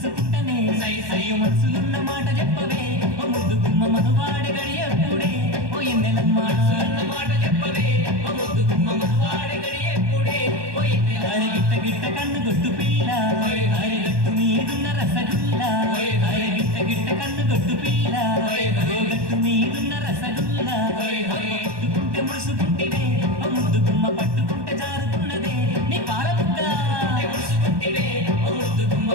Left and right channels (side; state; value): left; late; 1.2 ms